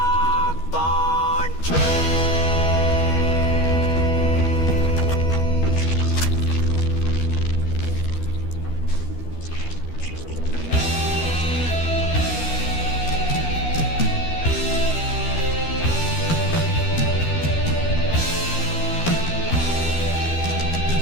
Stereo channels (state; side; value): late; right; 12 ms